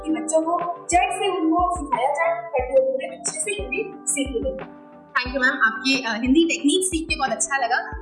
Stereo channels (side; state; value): both; identical; correlation 1.00